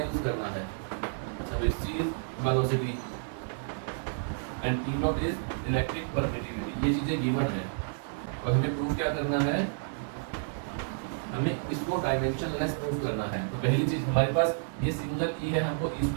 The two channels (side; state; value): left; silent; digital silence